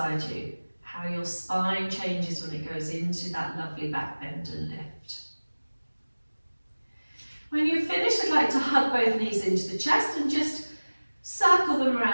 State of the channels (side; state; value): both; inverted; correlation -1.00